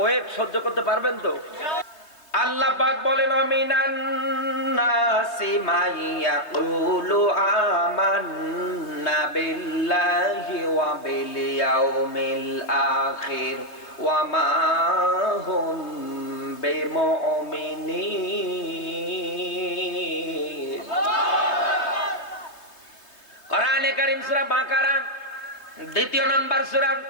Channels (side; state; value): right; late; 3.3 ms